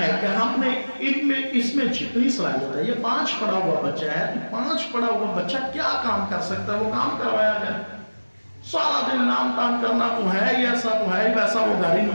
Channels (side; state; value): both; inverted; correlation -1.00